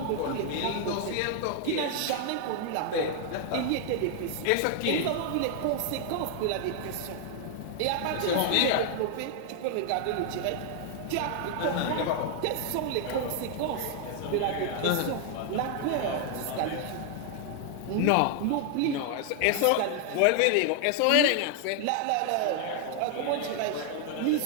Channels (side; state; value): both; different; correlation 0.00